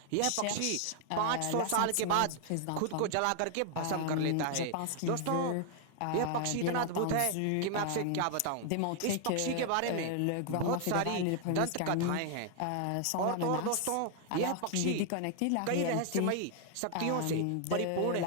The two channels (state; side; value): different; both; correlation 0.00